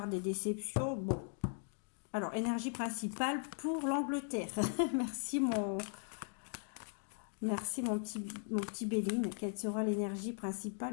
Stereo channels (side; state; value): right; silent; 52 dB below the other